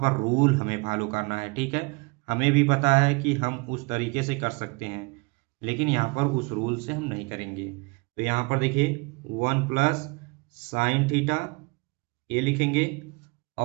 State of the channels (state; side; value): quieter; left; 28.7 dB